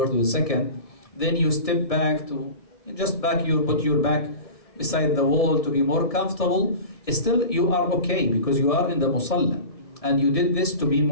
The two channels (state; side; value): late; right; 1.7 ms